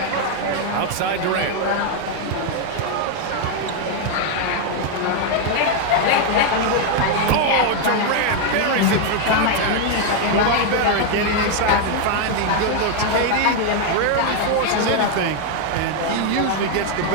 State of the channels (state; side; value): different; both; correlation 0.01